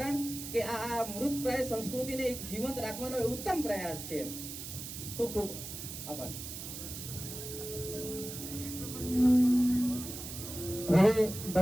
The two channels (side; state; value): right; noise; hiss, 9 dB below the sound